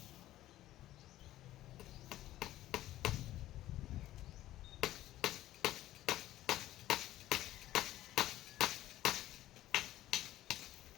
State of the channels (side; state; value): right; quieter; 14.5 dB